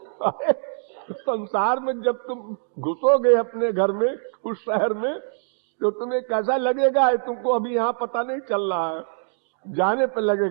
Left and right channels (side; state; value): left; silent; digital silence